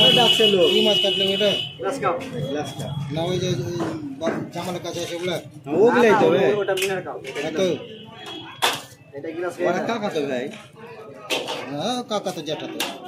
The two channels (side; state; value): both; identical; correlation 1.00